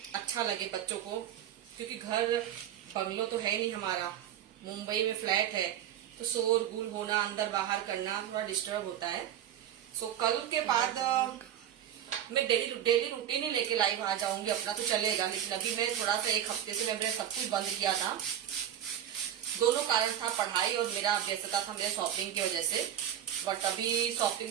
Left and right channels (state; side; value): quieter; left; 10.6 dB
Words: अच्छा लगे बच्चों को, क्योंकि घर बंगलो तो है नहीं हमारा, मुंबई में फ्लैट है, तो शोर गुल होना, अंदर बाहर करना थोड़ा डिस्टर्ब होता है। सो कल के बाद मैं डेली रूटीन ही लेके लाइव आ जाऊंगी, अपना तो चलेगा। लेकिन अभी मैं थोड़ा सा एक हफ्ते से मैंने सब कुछ बंद किया था। दोनों कारण था, पढ़ाई और मेरा व्यस्तता था मेरे शॉपिंग की वजह से। बट अभी